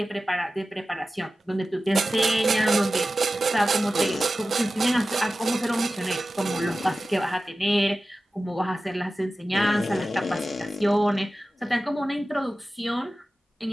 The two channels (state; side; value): normal; both; correlation 0.95